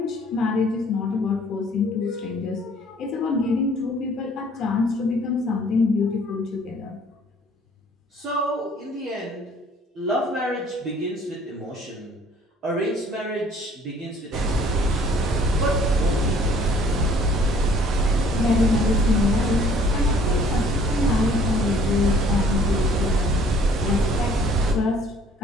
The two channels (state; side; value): normal; both; correlation 0.57